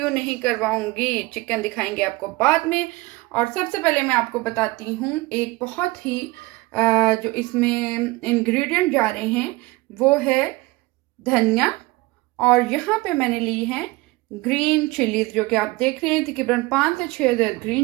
नहीं करवाऊंगी, चिकन दिखाएंगे आपको बाद में। और सबसे पहले मैं आपको बताती हूँ एक बहुत ही जो इसमें इंग्रेडिएंट जा रहे हैं वो है धनिया। और यहाँ पे मैंने ली है ग्रीन चिलीज, जो कि आप देख रहे हैं तकरीबन 5 से 6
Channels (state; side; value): quieter; left; 21.8 dB